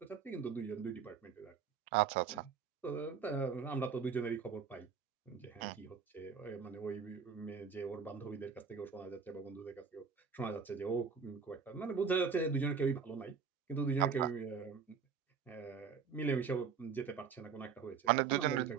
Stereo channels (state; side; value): quieter; left; 6.3 dB